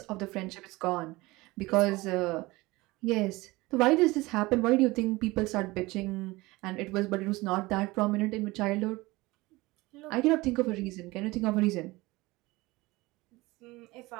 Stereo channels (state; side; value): quieter; left; 21.2 dB